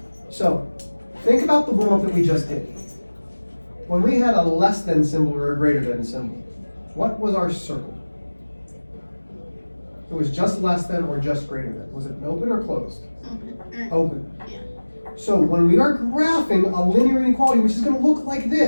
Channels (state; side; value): inverted; both; correlation -1.00